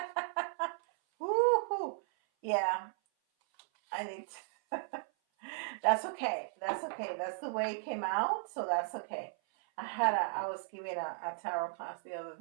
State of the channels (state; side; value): silent; left; 54 dB below the other